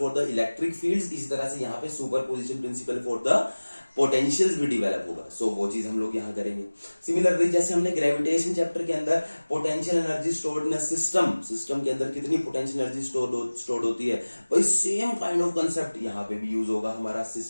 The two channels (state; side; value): inverted; both; correlation -1.00